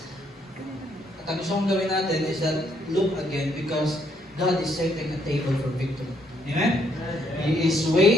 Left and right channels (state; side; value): normal; both; correlation 0.71